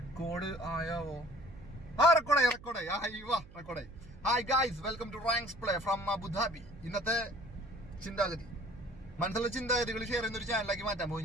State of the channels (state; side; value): noise; right; hum, 20 dB below the sound